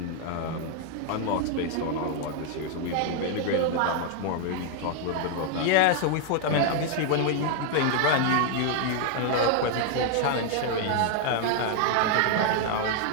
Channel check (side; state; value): both; different; correlation 0.00